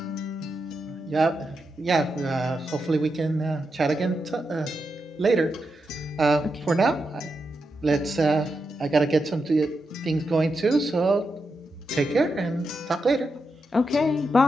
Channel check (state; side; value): normal; both; correlation 0.86